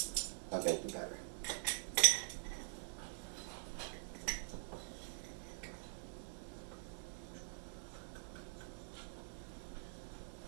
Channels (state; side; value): silent; left; digital silence